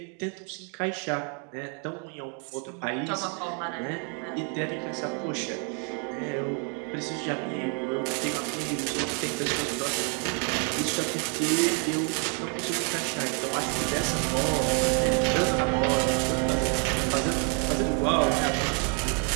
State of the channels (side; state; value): left; quieter; 38.9 dB